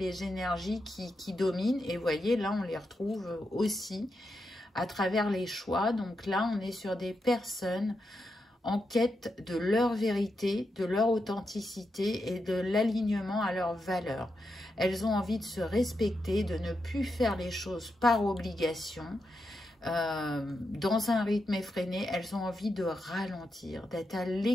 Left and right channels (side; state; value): both; normal; correlation 0.86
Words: énergies qui dominent. Et vous voyez, là, on les retrouve aussi à travers les choix. Donc là, on est sur des personnes en quête de leur vérité, de leur authenticité et de l'alignement à leurs valeurs. Elles ont envie de se respecter, de ne plus faire les choses par obligation, dans un rythme effréné. Elles ont envie de ralentir, d'être à